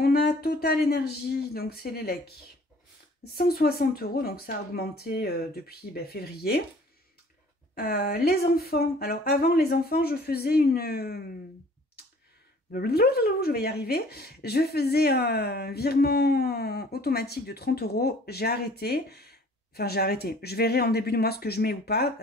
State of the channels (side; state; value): both; normal; correlation 0.52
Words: a Total Énergie, donc c'est l'élec, 160 €, donc ça a augmenté depuis février. Les enfants, alors avant les enfants, je faisais une... je vais y arriver. Je faisais un virement automatique de 30 €. J'ai arrêté. Enfin, j'ai arrêté. Je verrai en début de mois ce que je mets ou pas,